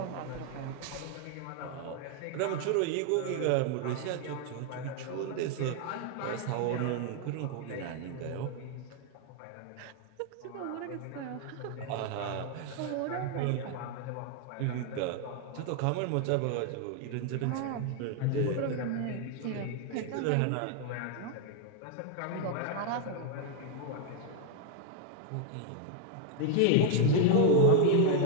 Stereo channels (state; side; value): different; both; correlation 0.01